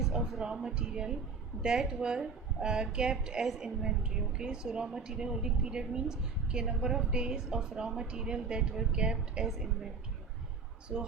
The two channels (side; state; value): left; quieter; 5.0 dB